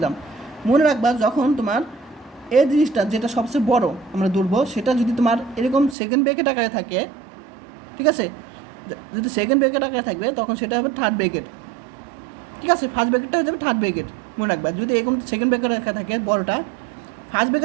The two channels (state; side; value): drops out; left; at 6.0 s